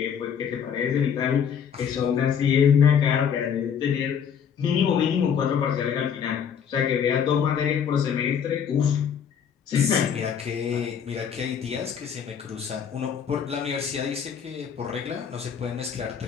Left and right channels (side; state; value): right; quieter; 7.7 dB